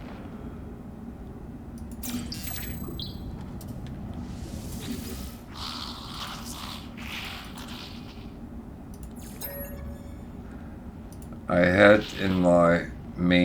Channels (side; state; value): both; identical; correlation 1.00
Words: I had in my